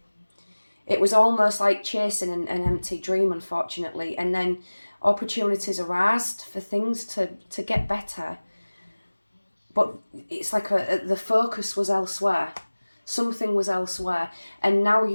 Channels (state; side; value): inverted; both; correlation -1.00